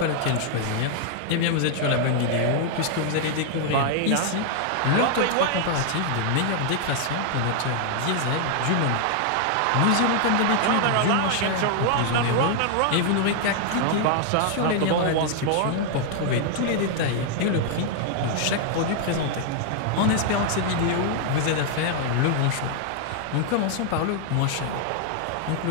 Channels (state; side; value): different; both; correlation 0.00